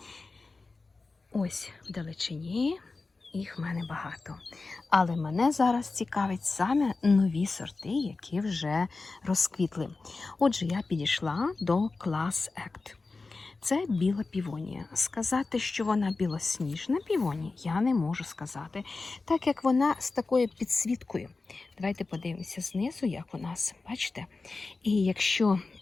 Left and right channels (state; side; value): quieter; right; 3.8 dB